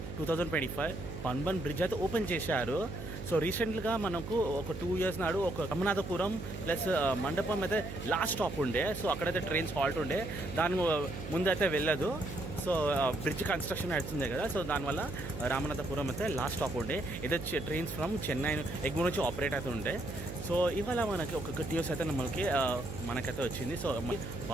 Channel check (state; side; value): noise; right; hum, 8 dB below the sound